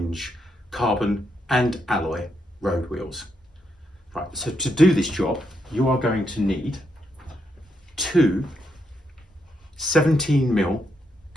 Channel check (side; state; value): both; normal; correlation 0.80